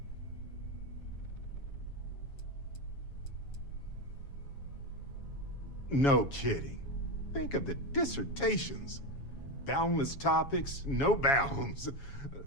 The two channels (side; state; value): right; late; 7.2 ms